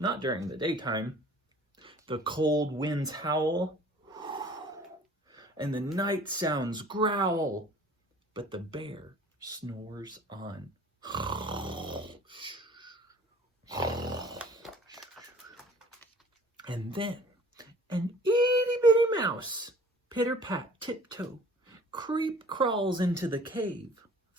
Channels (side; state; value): both; normal; correlation 0.49